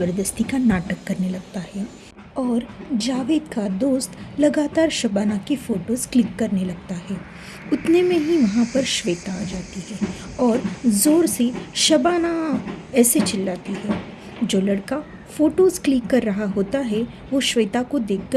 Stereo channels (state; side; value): identical; both; correlation 1.00